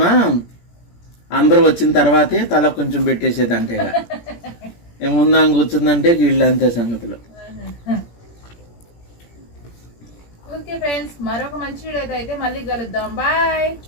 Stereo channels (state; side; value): late; right; 17 ms